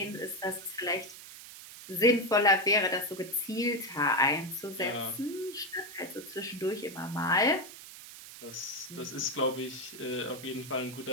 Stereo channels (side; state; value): right; noise; hiss, 14 dB below the sound